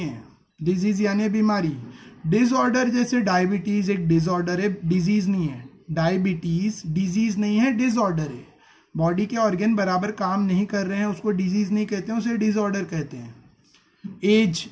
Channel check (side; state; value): both; identical; correlation 1.00